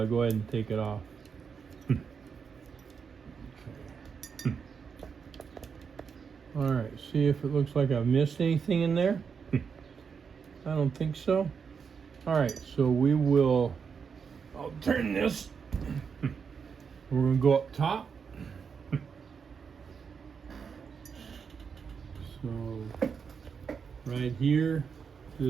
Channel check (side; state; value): left; quieter; 6.2 dB